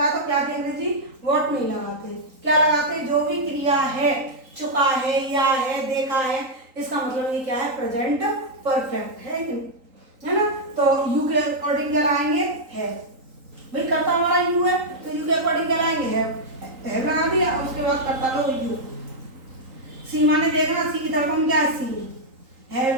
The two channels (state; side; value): late; left; 3.9 ms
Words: है, तो क्या की अंग्रेजी व्हाट नहीं लगाते, क्या लगाते, जो भी क्रिया है, चुका है, या है, देखा है, इसका मतलब ये क्या है, प्रेजेंट परफेक्ट है ना। तो यू के अकॉर्डिंग क्या लाएंगे, है, भाई कर्ता हमारा यू है, तो यू के अकॉर्डिंग क्या लाएंगे, है लगा दिया, उसके बाद कर्ता लो यू। सी माने देखना, सी की तरफ हम क्या है, सी,